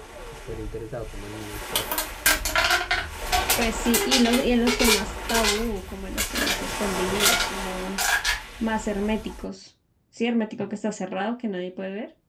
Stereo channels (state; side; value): identical; both; correlation 1.00